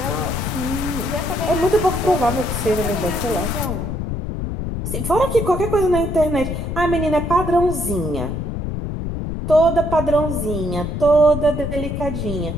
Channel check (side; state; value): left; noise; rumble, 4 dB below the sound